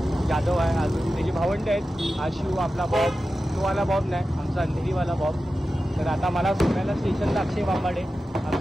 यादव आहे, अजून त्याचे भावंडे आहेत, आशिव आपला बॉब, तोवाला बॉब नाही, आमचा अंधेरीवाला बॉब. तर आता मला सोडायला स्टेशनला अक्षय बांबाडे,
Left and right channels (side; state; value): both; normal; correlation 0.93